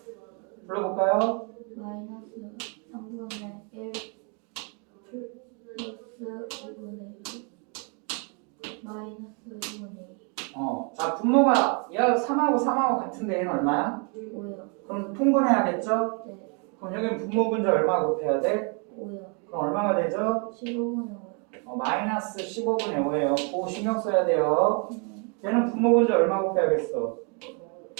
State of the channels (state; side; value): quieter; left; 36.6 dB